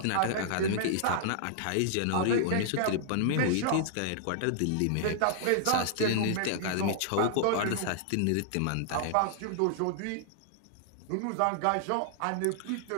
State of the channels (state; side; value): different; both; correlation -0.01